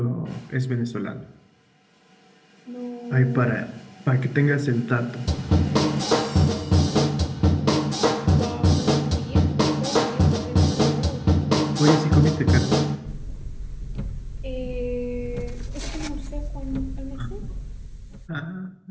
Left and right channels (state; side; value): identical; both; correlation 1.00